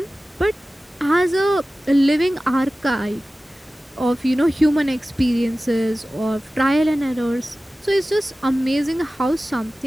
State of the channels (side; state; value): both; normal; correlation 0.96